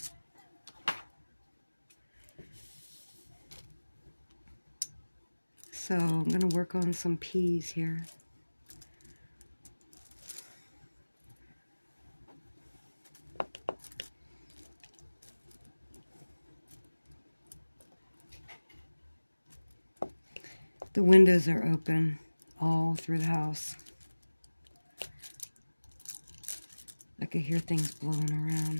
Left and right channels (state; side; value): inverted; both; correlation -1.00